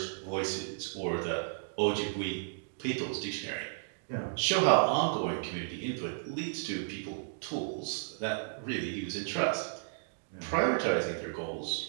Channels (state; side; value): silent; left; digital silence